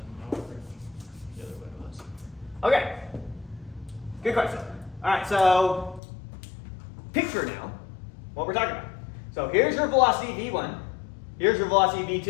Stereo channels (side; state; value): right; drops out; at 6.0 s